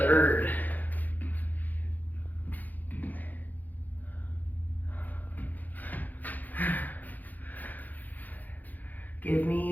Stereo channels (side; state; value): right; late; 0.083 ms